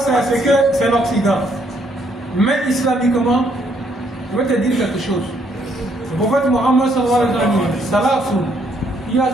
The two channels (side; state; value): both; normal; correlation 0.70